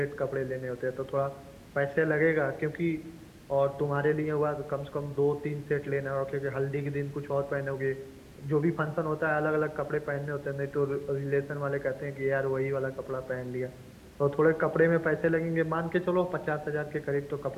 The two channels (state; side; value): identical; both; correlation 1.00